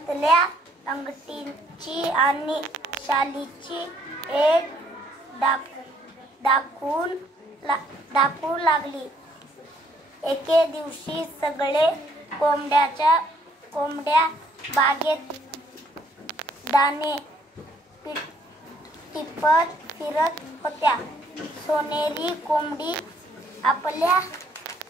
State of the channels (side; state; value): both; normal; correlation 0.65